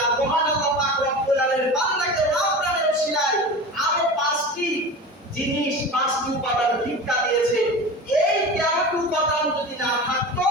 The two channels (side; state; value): both; normal; correlation 0.31